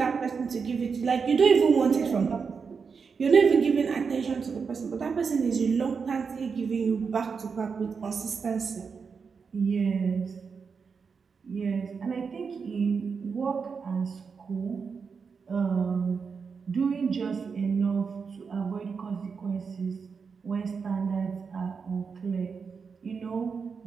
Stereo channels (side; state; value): left; quieter; 5.6 dB